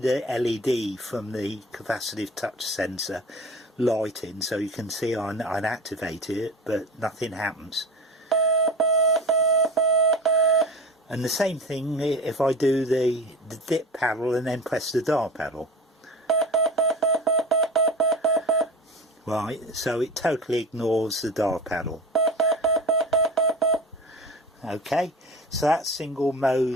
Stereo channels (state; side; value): normal; both; correlation 0.32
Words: LED from the capacitive touch sensor lighting, so you can see I activated it, but nothing happens. And the same thing if I do the dip paddle and then press the dial paddle. Right, so it totally ignores the dial paddle. Okay, so that's single